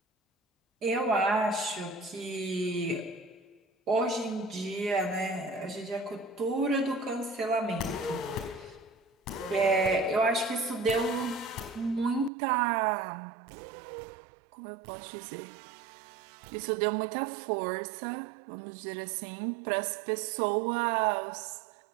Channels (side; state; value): left; drops out; at 12.3 s